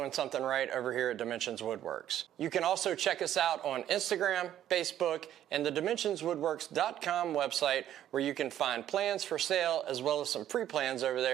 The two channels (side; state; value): left; quieter; 11.5 dB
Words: something right over here at Dimensionswoodworks. You can also check us out on Instagram, Facebook, and the Dimensionswoodworks.com website, where you can find plans for sale as well as some free plans over